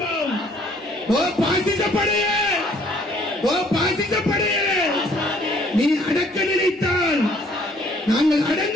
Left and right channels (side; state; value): both; normal; correlation 0.61